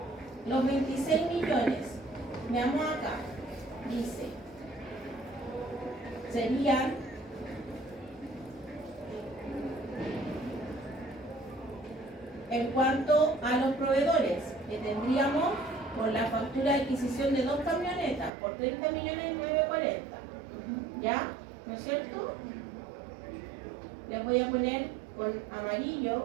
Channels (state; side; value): drops out; left; at 18.3 s